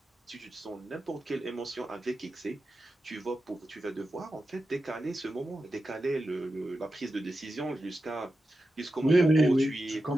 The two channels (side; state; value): both; normal; correlation 0.91